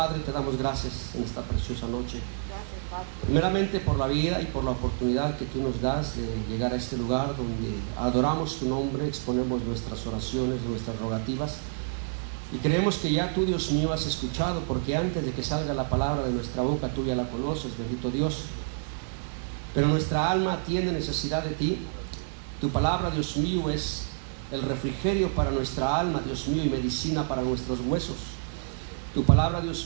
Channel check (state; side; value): silent; left; 59 dB below the other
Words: te damos gracias en esta preciosa noche. Primeramente por la vida y por la oportunidad que tú nos das de llegar a este lugar donde adoramos tu nombre, exponemos nuestras oraciones, nuestras rogativas. Y creemos que ya tú, Dios mío, has escuchado, porque antes de que salga la palabra de nuestra boca, tú ya la conoces, bendito Dios. Pero nuestra alma tiene necesidad de ti. Tu palabra, Dios mío, es el refrigerio para nuestra alma, Dios mío, y medicina para nuestros huesos. Tu palabra,